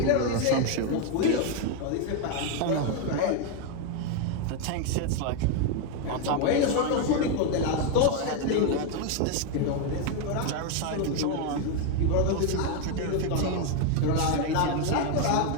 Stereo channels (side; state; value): both; different; correlation 0.01